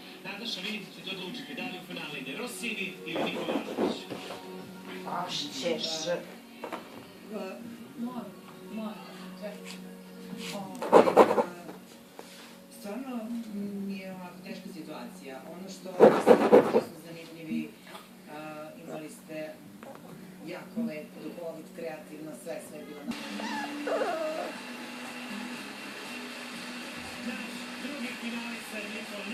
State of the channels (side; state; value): both; identical; correlation 1.00